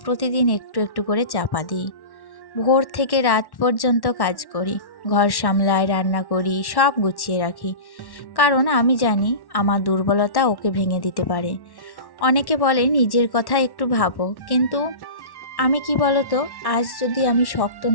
প্রতিদিন একটু একটু করে চাপা দিই। ভোর থেকে রাত পর্যন্ত কাজ করি, ঘর সামলাই, রান্না করি, সব গুছিয়ে রাখি। কারণ আমি জানি আমার দুর্বলতা ওকে ভেঙে দিতে পারে। অনেকে বলে নিজের কথা একটু ভাবো, কিন্তু আমি কি বলতো, আজ যদি আমি শক্ত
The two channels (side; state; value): right; late; 1.1 ms